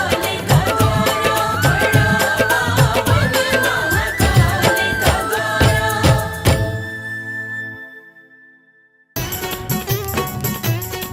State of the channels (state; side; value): identical; both; correlation 1.00